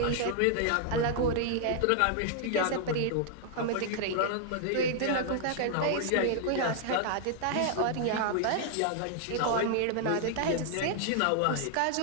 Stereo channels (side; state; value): both; different; correlation 0.00